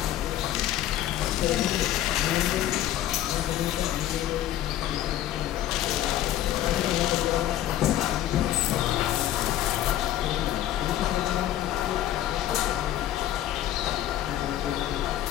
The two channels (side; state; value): right; quieter; 12.7 dB